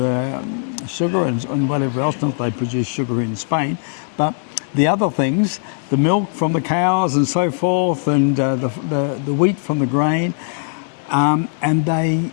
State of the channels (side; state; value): right; silent; digital silence